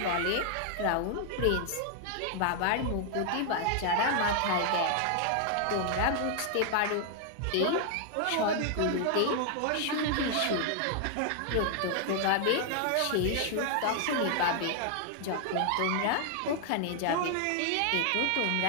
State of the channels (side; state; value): both; different; correlation 0.00